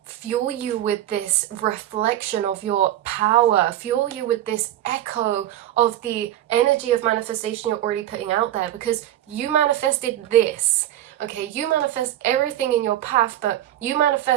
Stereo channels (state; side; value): quieter; left; 12.9 dB